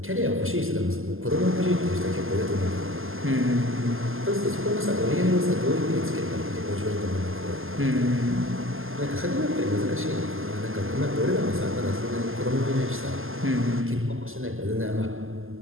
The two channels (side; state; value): left; late; 0.60 ms